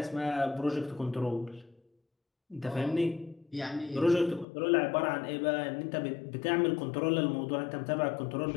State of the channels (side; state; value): right; drops out; at 4.5 s